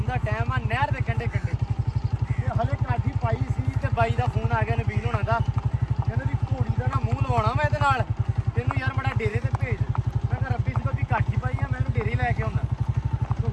ਦਾ ਟਾਈਮ ਆ, ਨਹਿਰ ਦੇ ਕੰਢੇ ਤੇ ਹਲੇ ਕਾਠੀ ਪਾਈ ਸੀ ਤੇ ਬਾਈ ਦਾ ਫੋਨ ਆ ਗਿਆ ਨਬੀਲ ਹੋਣਾ ਦਾ। ਕਹਿੰਦੇ ਵੀ ਘੋੜੀ ਦਾ ਨਾ ਮੂੰਹ ਲਵਾਉਣਾ ਮੈਂ ਇਹਦੇ ਨਾਲ, ਤੈਨੂੰ ਯਾਰ ਬੜਾ ਡੇਰੇ ਤੇ ਭੇਜ। ਮੈਂ ਕਿਹਾ ਰੱਬੀ ਸੀ ਕਾਠੀ ਪਾਈ ਆ, ਮੈਨੂੰ ਡੇਰੇ ਲੈ ਕੇ ਆਉਣਾ। ਤੂੰ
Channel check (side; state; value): both; identical; correlation 1.00